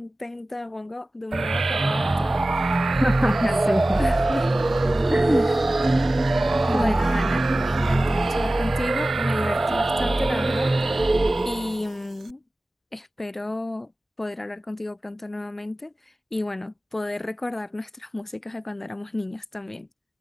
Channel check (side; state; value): both; normal; correlation 0.96